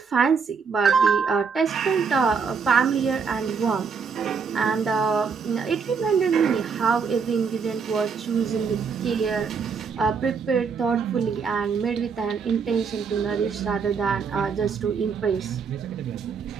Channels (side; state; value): left; quieter; 5.7 dB